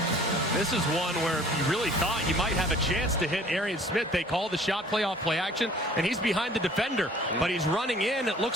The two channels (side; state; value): both; normal; correlation 0.52